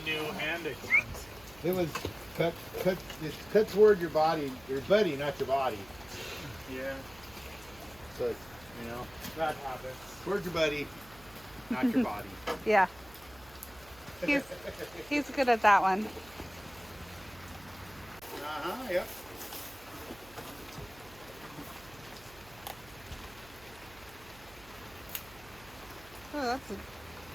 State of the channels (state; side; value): noise; right; hum, 22 dB below the sound